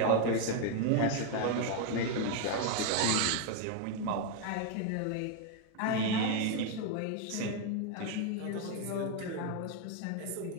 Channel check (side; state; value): both; different; correlation 0.01